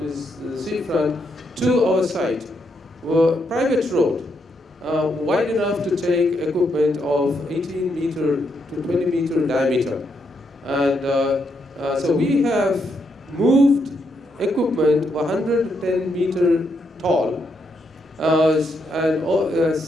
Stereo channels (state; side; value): normal; both; correlation 0.78